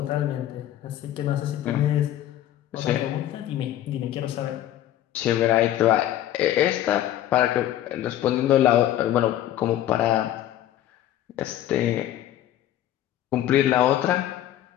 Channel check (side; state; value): right; quieter; 12.5 dB